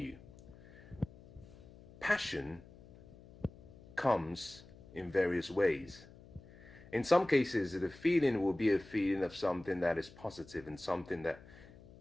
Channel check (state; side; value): noise; left; hum, 21 dB below the sound